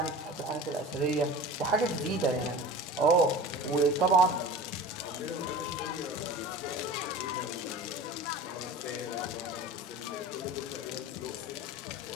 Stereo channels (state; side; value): normal; both; correlation 0.36